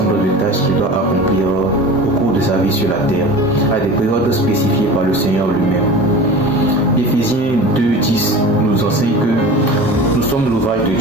de tâches qu'il doit accomplir au cours de sa vie sur la terre, à des périodes spécifiées par le Seigneur lui-même. Éphésiens 2:10 nous enseigne que nous sommes l'ouvrage de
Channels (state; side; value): normal; both; correlation 0.35